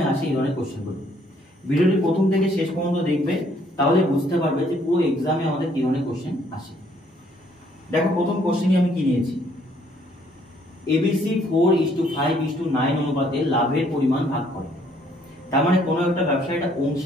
আসে এই ধরনের কোশ্চেনগুলো। ভিডিওটি প্রথম থেকে শেষ পর্যন্ত দেখবে, তাহলে বুঝতে পারবে যে পুরো এক্সামে আমাদের কি ধরনের কোশ্চেন আসে। দেখো প্রথম কোশ্চেনই আমি কি নিয়েছি, এবিসি 4:5:9 অনুপাতে লাভের পরিমাণ ভাগ করে। তার মানে কোনো একটা ব্যবসা, এটা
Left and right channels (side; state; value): both; normal; correlation 0.65